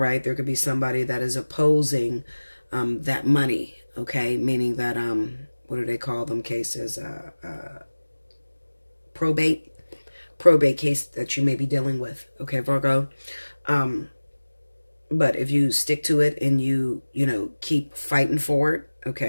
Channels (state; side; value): inverted; both; correlation -1.00